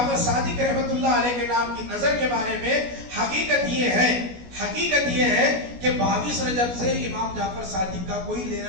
صادق رحمۃ اللہ علیہ کے نام کی نظر کے بارے میں حقیقت یہ ہے کہ 22 رجب سے امام جعفر صادق کا کوئی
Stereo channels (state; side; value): late; left; 16 ms